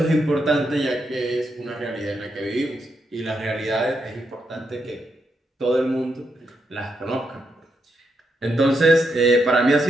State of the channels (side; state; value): both; normal; correlation 0.82